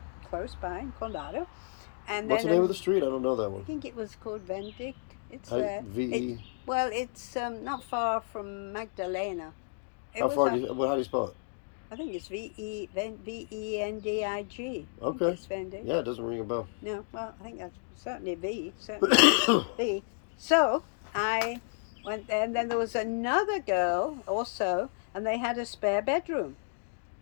close by in Condado. And What's then the name of the street? I don't know that I one. think it was called Vendig. It's there. V-E. Well, it's not far from Magdalena. It How was far on- do you, how do you spell it? I think it's Vendig. Okay. It's Vendig. Yeah, it doesn't ring a bell. No, well, I think that's certainly V. Certainly V. So I went there, and then there was another girl also, and they had a spare bedroom.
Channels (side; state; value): right; silent; digital silence